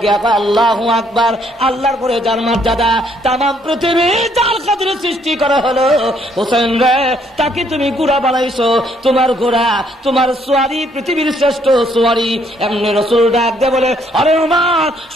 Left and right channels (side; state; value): both; normal; correlation 0.68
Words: গিয়া আল্লাহু আকবার, আল্লাহর পরে যার মর্যাদা, তামাম পৃথিবী যার খাতিরে সৃষ্টি করা হলো হোসেন রে, তাকে তুমি গুড়া বানাইছো। তোমার ঘোড়া, তোমার সোয়ারি পৃথিবীর শ্রেষ্ঠ সোয়ারি। এমনি রসুল ডাক দে বলে আরে ওমর,